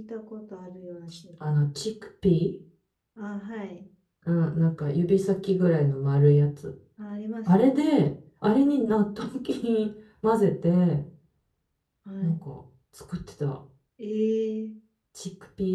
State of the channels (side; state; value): both; identical; correlation 1.00